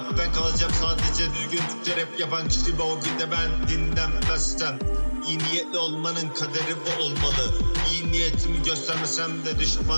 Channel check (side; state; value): both; inverted; correlation -1.00